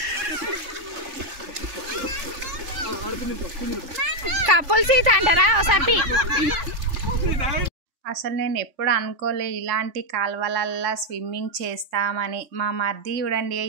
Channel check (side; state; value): left; late; 3.5 ms